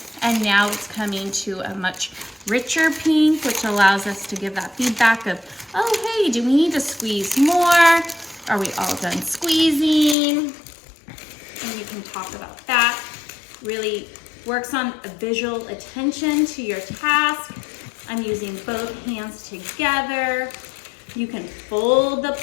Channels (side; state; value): right; drops out; at 10.2 s